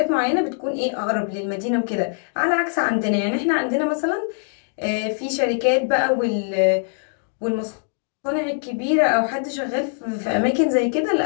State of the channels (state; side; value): silent; right; digital silence